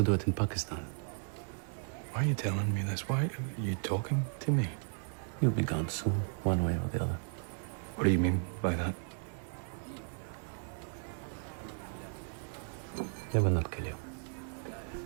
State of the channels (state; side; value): silent; left; 54 dB below the other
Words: do it in Pakistan. Why are you telling me this? Why are you talking to me? You'll be gone soon, one way or the other. What do you mean by that? They will not kill you.